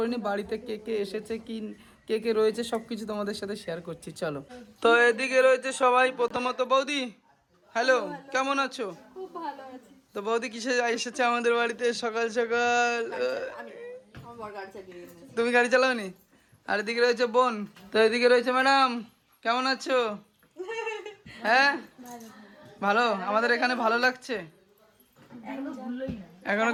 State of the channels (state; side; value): identical; both; correlation 1.00